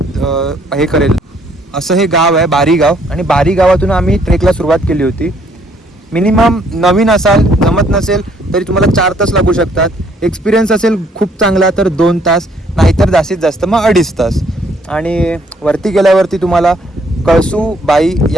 हे करेल. असं हे गाव आहे बारी गाव. आणि बारी गावातून आम्ही ट्रेकला सुरुवात केली होती. मिनिमम नवीन असाल, जमत नसेल तरी तुम्हाला 4 तास लागू शकतात. एक्सपिरियन्स असेल खूप चांगला तर 2 तास, नाहीतर जास्तीत जास्त मग 2.5 तास. आणि वरती गेल्यावरती तुम्हाला कळसूबाई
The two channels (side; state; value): both; normal; correlation 0.65